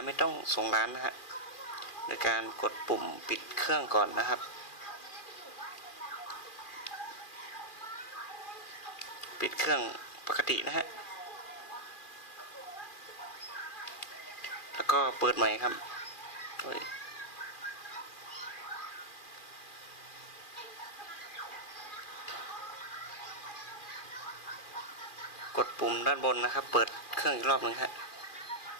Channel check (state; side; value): late; right; 2.4 ms